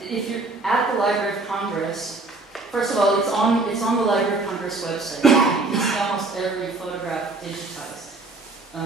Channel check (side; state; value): left; quieter; 3.3 dB